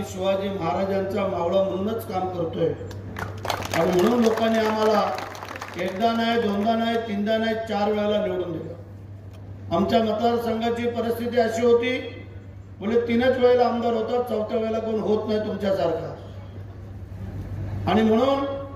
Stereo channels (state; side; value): identical; both; correlation 1.00